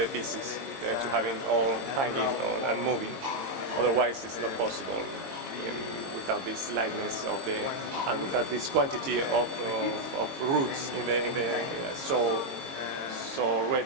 pieces, to having all hanging and moving. Otherwise, it's not possible without this lightness and without this quantity of roots in the so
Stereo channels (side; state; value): left; late; 22 ms